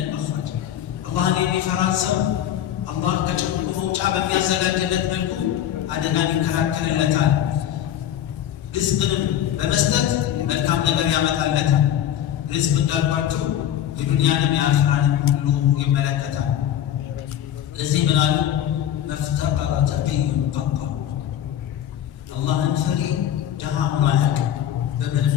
መኽረጅ። አላህን የሚፈራን ሰው አላህ ከጭንቁ መውጫ በሚያዘጋጅለት መልኩ አደጋን ይከላከልለታል። ርዝቅንም በመስጠት መልካም ነገር ያመጣለታል። ርዝቅ እንዳልኳችሁ የዱንያንም የአኺራንም ሁሉ ይመለከታል። ለዚህ ምን አሉ? መፍተቀረ ተቂዩን ቀጣ። አላህን ፈሪ ድሃ ሆኖ አያውቅም። በምንም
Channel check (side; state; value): right; quieter; 10.8 dB